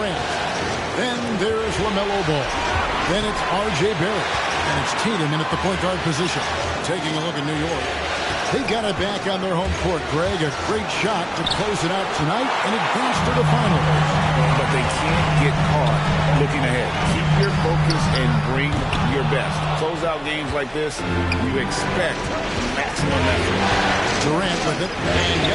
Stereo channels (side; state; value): both; identical; correlation 1.00